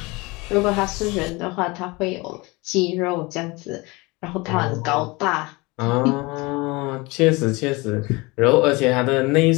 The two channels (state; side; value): quieter; right; 24.7 dB